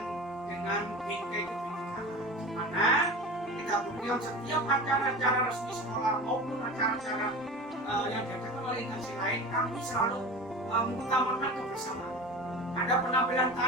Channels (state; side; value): normal; both; correlation 0.32